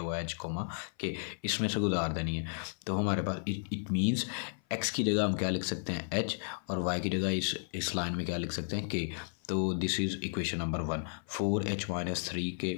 हुआ है h, के इसमें से गुजार देनी है। तो हमारे पास इट मीन्स x की जगह हम क्या लिख सकते हैं h, और y की जगह इस लाइन में क्या लिख सकते हैं k। तो this is equation number 1, 4h - 3 के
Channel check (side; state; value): right; silent; 55 dB below the other